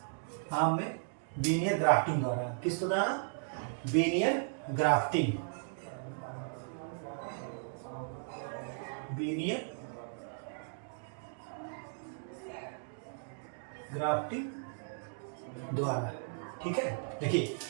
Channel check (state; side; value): silent; left; digital silence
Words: आम में बीनियर ग्राफ्टिंग द्वारा। किसके द्वारा? बीनियर ग्राफ्टिंग। बीनियर ग्राफ्टिंग द्वारा। ठीक है। देखिए,